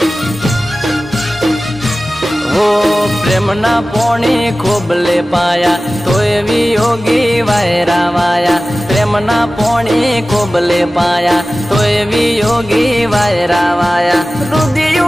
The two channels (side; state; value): both; normal; correlation 0.96